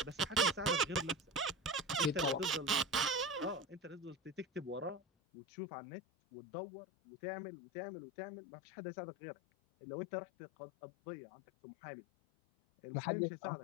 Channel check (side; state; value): right; drops out; at 5.0 s